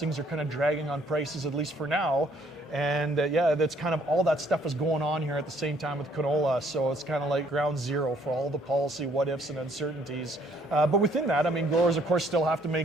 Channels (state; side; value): normal; both; correlation 0.64